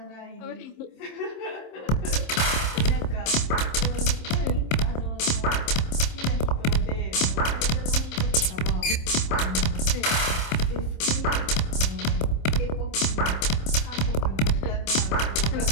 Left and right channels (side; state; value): right; late; 27 ms